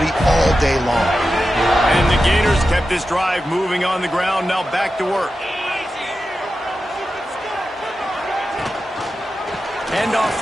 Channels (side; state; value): both; normal; correlation 0.91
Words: all day long. And the Gators kept this drive moving on the ground, now back to work. Handoff